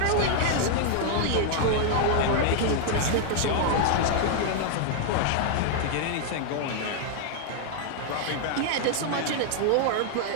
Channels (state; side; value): different; both; correlation 0.00